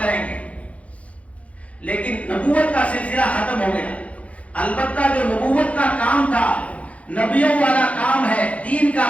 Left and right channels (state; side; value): late; right; 0.065 ms